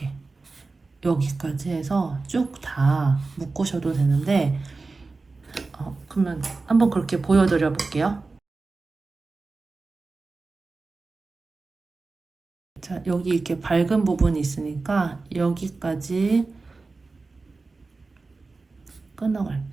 여기까지 해서 쭉 다 묶으셔도 되는데 그러면 한번 그렇게 보여드려 볼게요. 자, 여기 이렇게 밝은 부분이 있으니까 여기까지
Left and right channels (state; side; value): quieter; left; 3.8 dB